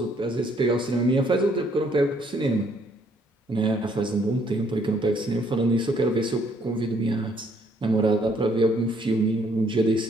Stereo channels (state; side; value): normal; both; correlation 0.67